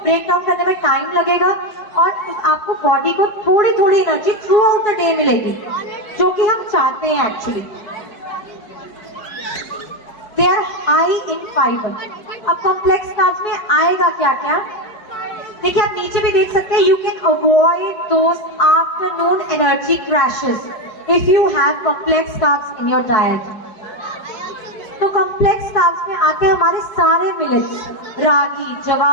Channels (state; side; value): late; right; 4.8 ms